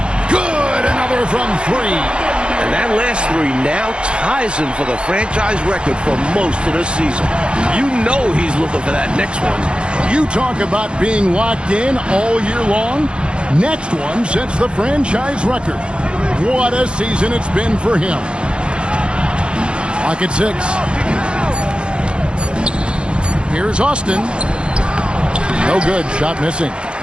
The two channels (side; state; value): left; late; 0.055 ms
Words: Good, another from 3. And that last 3 now ties him for the franchise record for most of the season. You know he's looking for that next one. You talk about being locked in all year long. Next one sets the franchise record. What a season it's been for him. Lock at 6. Here's Austin. No good. Shot missing.